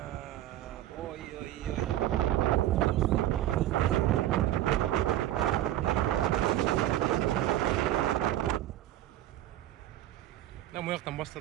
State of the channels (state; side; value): quieter; left; 13.6 dB